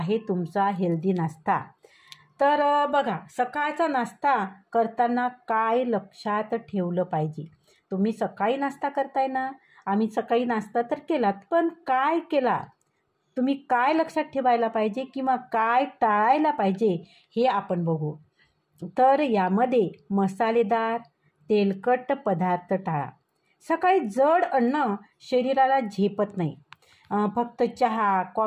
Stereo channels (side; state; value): both; identical; correlation 1.00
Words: तुमचा हेल्दी नाश्ता. तर बघा, सकाळचा नाश्ता करताना काय लक्षात ठेवलं पाहिजे. तुम्ही सकाळी नाश्ता करताय ना, आम्ही सकाळी नाश्ता तर केलात, पण काय केला, तुम्ही काय लक्षात ठेवायला पाहिजे किंवा काय टाळायला पाहिजे हे आपण बघू. तर यामध्ये मसालेदार तेलकट पदार्थ टाळा. सकाळी जड अन्न शरीराला झेपत नाही. फक्त चहा